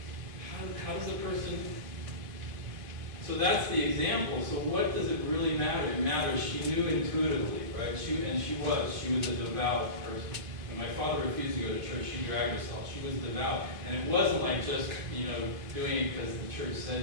How does a person... So that's the example. So what does it really matter? It matters. She knew intuitively, right? She was a devout person. When my father refused to go to church, she dragged herself. She was devout. And it wasn't like just, doing it because the church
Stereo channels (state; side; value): late; left; 2.5 ms